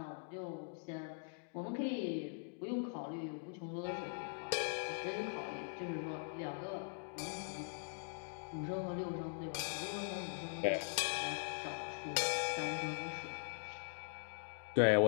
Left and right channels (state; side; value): silent; right; digital silence